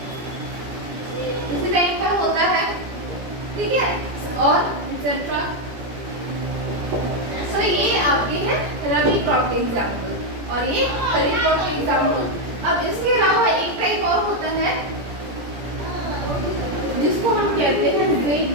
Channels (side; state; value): left; late; 17 ms